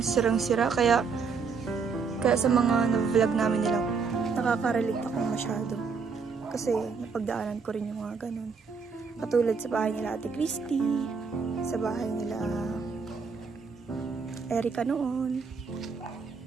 sirang-sira. Kaya sa mga na-vlog namin nila, nakaka-relate ako masyado. Kasi napagdaanan ko rin yung mga ganun. Katulad sa bahay nila Ate Christy, sa bahay nila Erica noon.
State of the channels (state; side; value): quieter; left; 5.3 dB